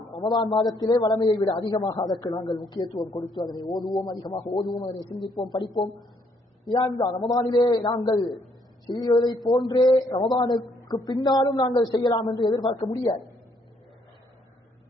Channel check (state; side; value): normal; both; correlation 0.70